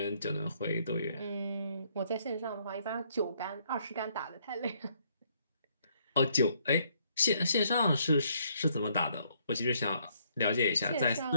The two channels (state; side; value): inverted; both; correlation -0.69